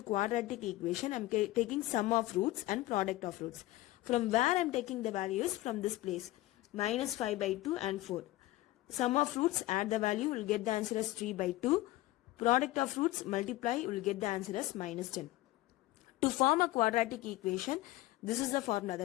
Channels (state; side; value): quieter; right; 17.3 dB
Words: quadratic equation, I am taking sum of roots and product of roots. From where I am taking the values? From this place, minus 5 by 2 and 4. Sum of roots, add the value, will get the answer as 3 by 2. Product of roots, multiply, you will get the answer as minus 10. To form a quadratic equation, this is the formula,